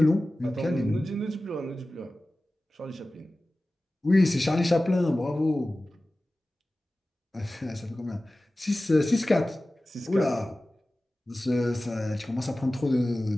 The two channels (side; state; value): both; normal; correlation 0.96